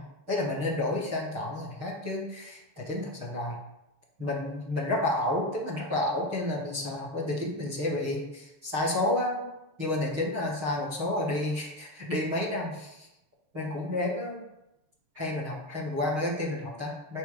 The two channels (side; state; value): left; late; 6.5 ms